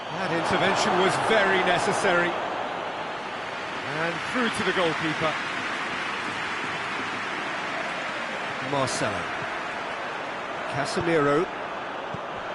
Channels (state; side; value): identical; both; correlation 1.00